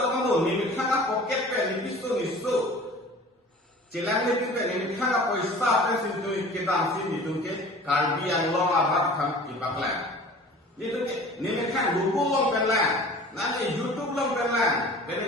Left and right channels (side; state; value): both; normal; correlation 0.43